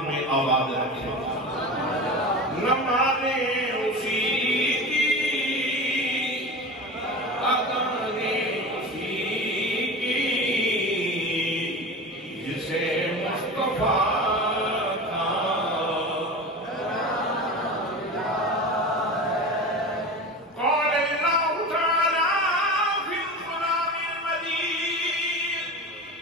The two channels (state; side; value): normal; both; correlation 0.30